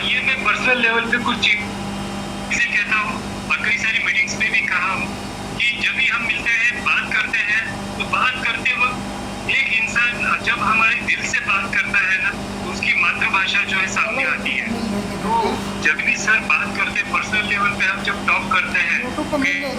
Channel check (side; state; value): both; identical; correlation 1.00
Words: ये मैं पर्सनल लेवल पे कुछ चीजें कहता हूँ और कई सारी मीटिंग्स में भी कहा हूँ कि जब भी हम मिलते हैं बात करते हैं तो बात करते वक्त एक इंसान जब हमारे दिल से बात करता है ना तो उसकी मातृभाषा जो है सामने आती है। तो जब भी सर बात करते पर्सनल लेवल पे हम जब टॉक करते हैं